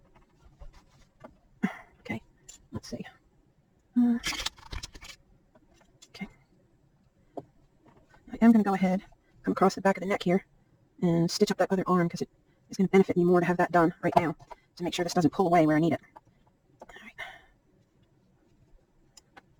Okay. Let's see. Okay. I am going to go ahead, come across the back of the neck here, and stitch up that other arm because it is going to benefit me more to have that done right now to make sure this doesn't pull away where I need it. All right.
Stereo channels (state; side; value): identical; both; correlation 1.00